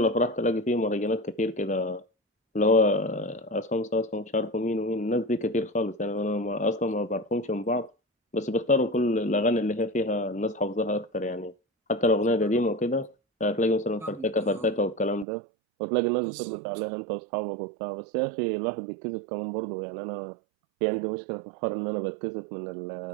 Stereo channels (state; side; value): drops out; left; at 15.2 s